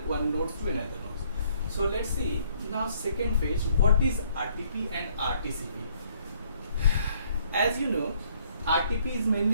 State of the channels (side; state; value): both; inverted; correlation -0.65